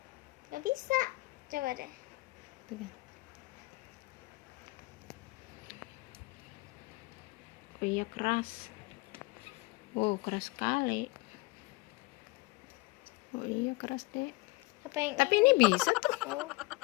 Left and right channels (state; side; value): quieter; right; 23.5 dB